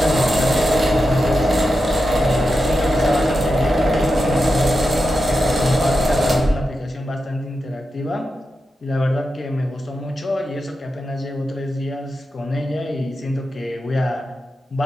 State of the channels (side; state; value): both; normal; correlation 0.89